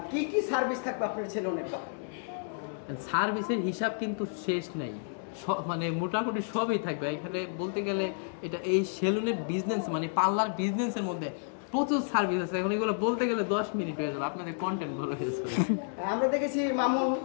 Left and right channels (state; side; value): silent; right; digital silence